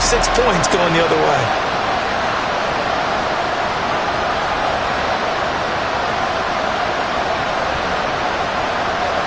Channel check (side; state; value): both; identical; correlation 1.00